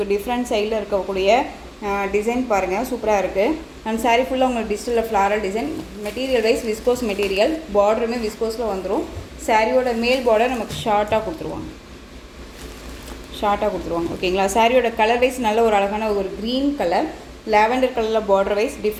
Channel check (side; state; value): both; identical; correlation 1.00